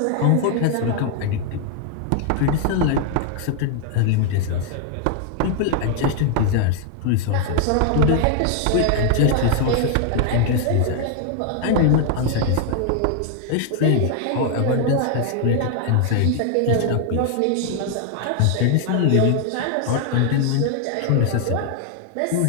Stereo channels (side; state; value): both; different; correlation 0.00